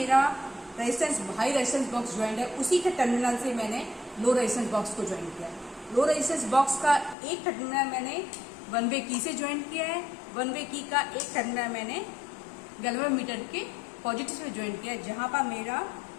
resistance high resistance box joint है, उसी के टर्मिनल से मैंने लो रेजिस्टेंस बॉक्स को ज्वाइन किया। लो रेजिस्टेंस बॉक्स का एक टर्मिनल मैंने वन वे की से ज्वाइन किया है, वन वे की का एक टर्मिनल मैंने गैल्वेनोमीटर के पॉजिटिव से ज्वाइन किया है, जहां पर मेरा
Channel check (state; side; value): drops out; right; at 7.2 s